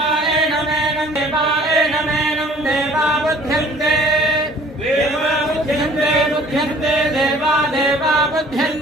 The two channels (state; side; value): normal; both; correlation 0.52